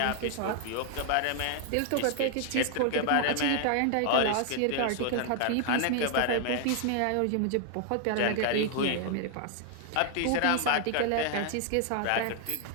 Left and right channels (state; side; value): different; both; correlation 0.00